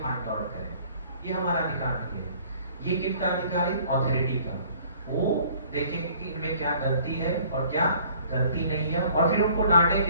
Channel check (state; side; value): inverted; both; correlation -0.55